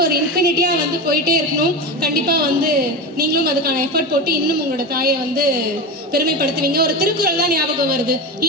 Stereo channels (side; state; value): both; normal; correlation 0.22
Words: ஒரு இன்ஃபினிட்டியா வந்து போயிட்டே இருக்கணும். கண்டிப்பா வந்து நீங்களும் அதுக்கான எஃபர்ட் போட்டு இன்னும் உங்களோட தாயை வந்து பெருமைப்படுத்துவீங்க. ஒரு திருக்குறள் தான் ஞாபகம் வருது.